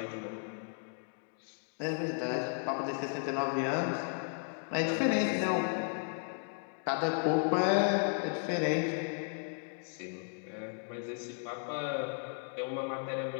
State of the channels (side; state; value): right; silent; 55 dB below the other